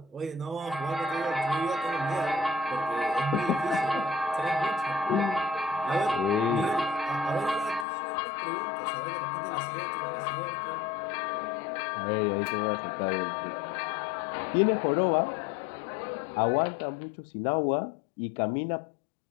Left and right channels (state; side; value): drops out; right; at 7.9 s